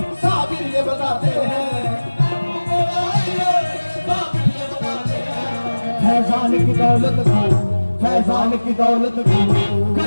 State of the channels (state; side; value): inverted; both; correlation -1.00